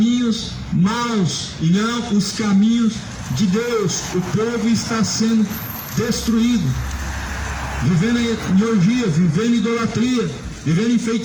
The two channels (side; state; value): both; identical; correlation 1.00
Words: maus e não os caminhos de Deus. O povo está sendo destruído, vivendo em orgia, vivendo em idolatria, vivendo em